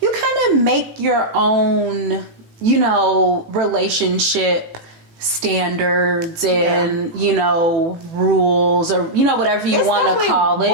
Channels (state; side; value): late; left; 18 ms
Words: you kind of make your own, you know, relationship standards and you know, rules, or you know, whatever you want to call it.